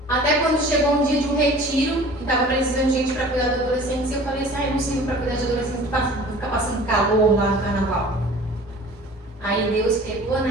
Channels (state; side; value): normal; both; correlation 0.45